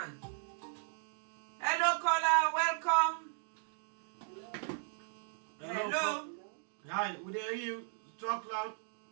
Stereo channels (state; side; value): silent; left; digital silence